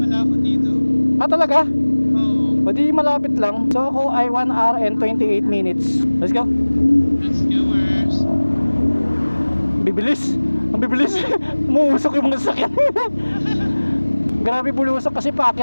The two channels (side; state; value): both; inverted; correlation -1.00